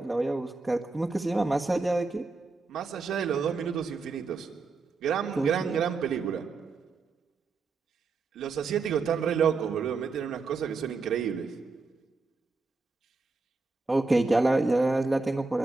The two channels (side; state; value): left; quieter; 4.0 dB